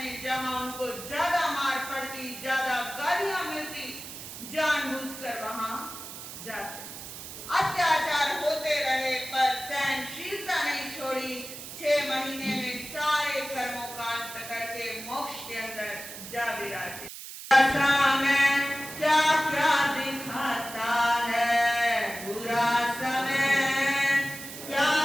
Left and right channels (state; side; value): noise; right; hiss, 11 dB below the sound